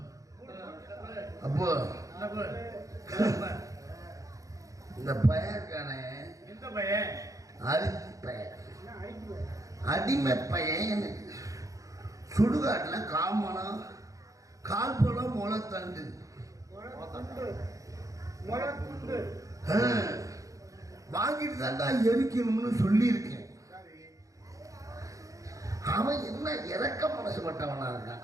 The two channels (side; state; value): left; late; 0.16 ms